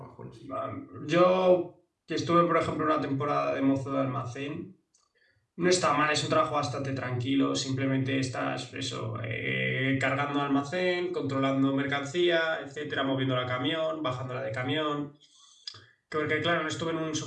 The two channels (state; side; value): identical; both; correlation 1.00